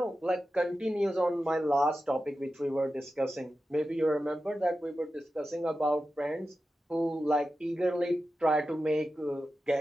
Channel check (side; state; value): both; normal; correlation 0.92